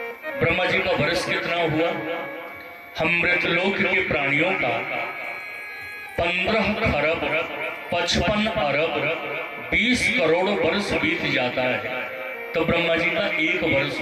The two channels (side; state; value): both; identical; correlation 1.00